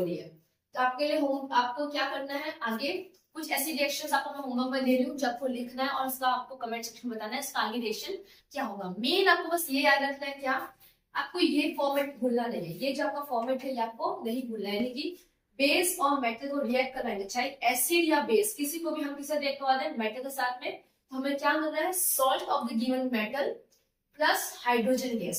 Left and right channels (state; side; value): identical; both; correlation 1.00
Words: है। तो आपके लिए आपको क्या करना है, आगे कुछ ऐसी रिएक्शंस आपको मैं होमवर्क में दे रही हूँ जो आपको लिखना है और उसका आपको कमेंट सेक्शन में बताना है इसका आगे रिएक्शन क्या होगा। मेन आपको बस ये याद रखना है, क्या आपको ये फॉर्मेट भूलना नहीं है, ये जो आपका फॉर्मेट है ये आपको नहीं भूलना है, यानी कि बेस और मेटल को रिएक्ट कराएंगे, चाहे एसिड या बेस किसी को भी हम किससे रिएक्ट करवा दें, मेटल के साथ में, तो हमें क्या मिल रहा है, salt of the given metal plus hydrogen